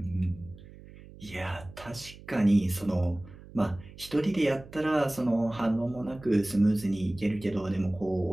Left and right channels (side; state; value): right; noise; hum, 19 dB below the sound